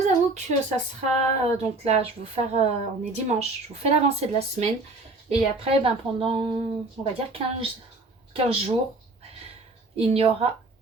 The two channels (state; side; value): quieter; left; 3.2 dB